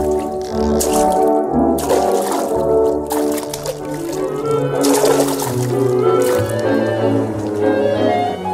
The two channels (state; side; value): identical; both; correlation 1.00